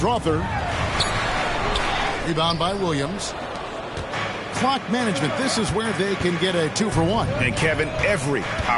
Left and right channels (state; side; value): identical; both; correlation 1.00